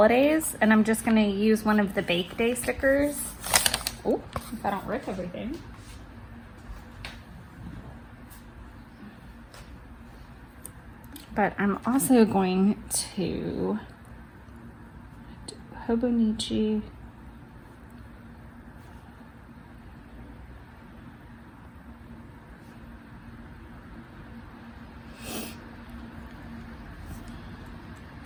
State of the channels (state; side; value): identical; both; correlation 1.00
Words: and I'm just going to use one of the Bake Day stickers. Oh, if I don't rip everything. But I'm also going to do Hobonichi.